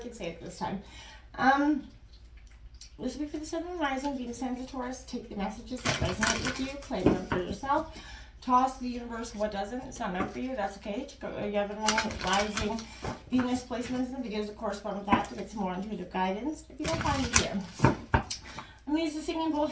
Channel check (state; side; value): identical; both; correlation 1.00